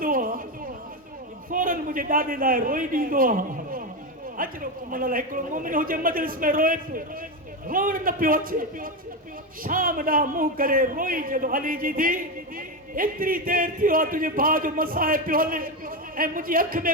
आहे, फौरन मुंहिंजे ॾाॾे लाइ रोई ॾींदो आहे। अजरो कुमल हिकिड़ो मोमिन हुजे मजलिस में रोए पियो, रोअण न पियो अचे, शाम ॾांहुं मुंहुं करे रोई जॾहिं अली जी थी एतिरी देरि थियो आहे तुंहिंजे भाउ जो मसाइब पियो हले ऐं मुंहिंजी अखि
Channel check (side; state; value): both; normal; correlation 0.13